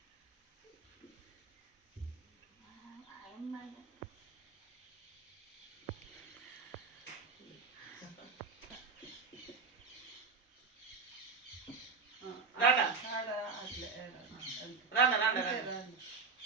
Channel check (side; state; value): left; quieter; 5.1 dB